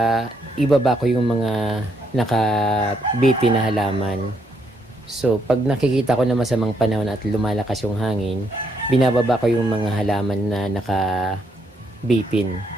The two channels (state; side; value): normal; both; correlation 0.74